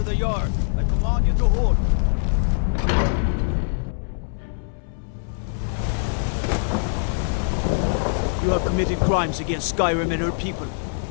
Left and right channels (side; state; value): right; silent; 63 dB below the other